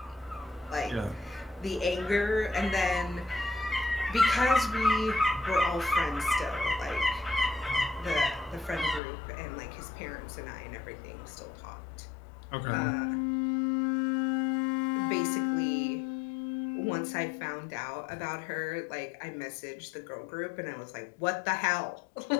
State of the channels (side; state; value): right; drops out; at 9.0 s